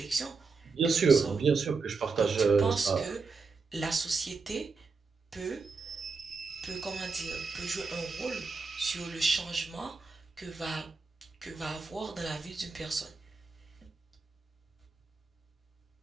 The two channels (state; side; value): quieter; left; 4.5 dB